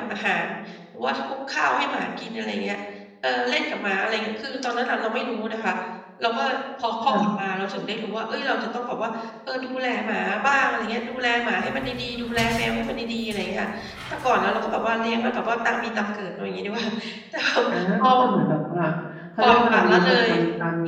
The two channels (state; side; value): identical; both; correlation 1.00